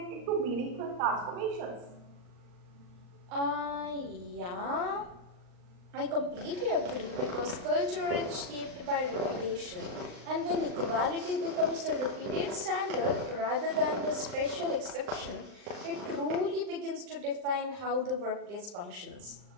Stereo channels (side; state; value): left; late; 39 ms